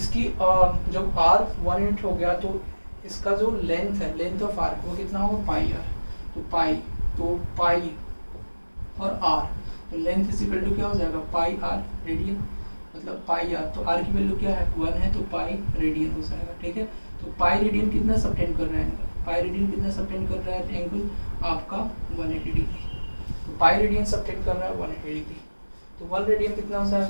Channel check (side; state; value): both; inverted; correlation -1.00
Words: जब r 1 यूनिट हो गया तो इसका जो लेंथ है, लेंथ ऑफ आर्क वो कितना होगा पाई r, तो पाई और r, तो लेंथ इज इक्वल टू क्या हो जाएगा पाई r रेडियन, मतलब पाई r, तो r की वैल्यू क्या है 1 है, तो पाई रेडियन हो जाएगा, ठीक है। तो पाई रेडियन कितना सबटेंड कर रहा है, पाई रेडियन कितना सबटेंड कर रहा है एंगल आपका 180 डिग्री, तो पाई रेडियन सबटेंड कर रहा है 180 डिग्री, तो 1 रेडियन कितना हो